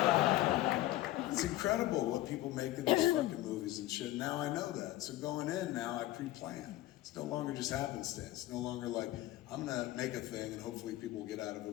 it's incredible what people make in these fucking movies and shit. Now I know that. So going in now, I pre-plan. It's no longer just happenstance. It's no longer like, I'm gonna make a thing and hopefully people will get out of it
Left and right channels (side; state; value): right; quieter; 15.8 dB